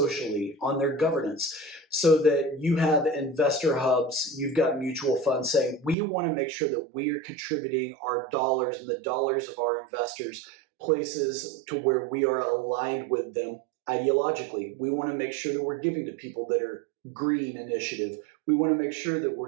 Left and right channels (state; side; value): drops out; left; at 6.0 s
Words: on their governance? So that you have investor hubs, you've got mutual funds saying, we want to make sure that we are contributing our dollars and the dollars of our investors places to where we are aligned with them ideologically. We want to make sure that we're giving to people that are green initiative. We want to make sure that